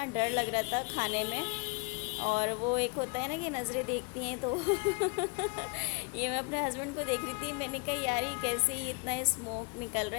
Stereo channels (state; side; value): quieter; right; 29.8 dB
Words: डर लग रहा था खाने में, और वो एक होता है ना कि नज़रें देखती हैं, तो ये मैं अपने हस्बैंड को देख रही थी। मैंने कहा यार ये कैसे ही इतना स्मोक निकल रहा